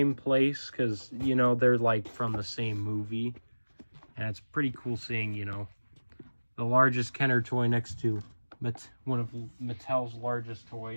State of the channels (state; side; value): inverted; both; correlation -1.00